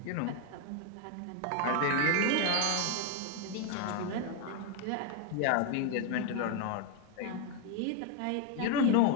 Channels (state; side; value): different; both; correlation 0.01